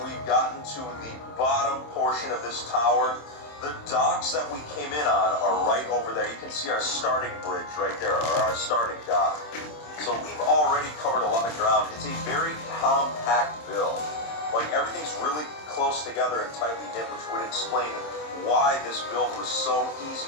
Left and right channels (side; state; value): right; late; 26 ms